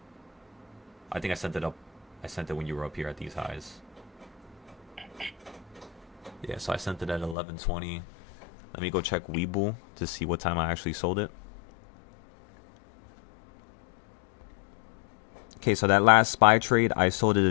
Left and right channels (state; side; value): drops out; right; at 7.4 s